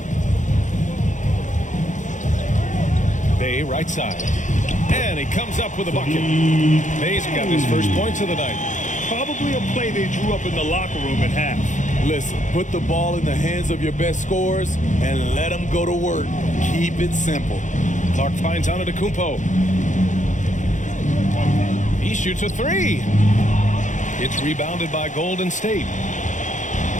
Bay right side. And he comes up with a bucket. Bay's got his first points of the night. Probably a play they drew up in the locker room at half. Listen, put the ball in the hands of your best scorers and let them go to work. Keep it simple. Clark finds Antetokounmpo. He shoots a 3. It's rebounded by Golden State.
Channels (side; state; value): right; late; 0.36 ms